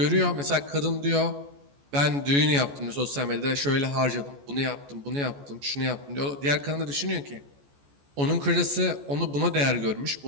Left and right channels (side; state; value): left; late; 14 ms